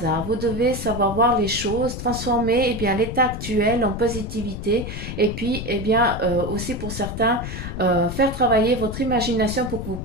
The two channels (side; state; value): left; noise; rumble, 7 dB below the sound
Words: Vous devez savoir voir les choses, transformer eh bien, l'état actuel en positivité et puis eh bien, aussi pour certains, faire travailler votre imagination pour que vous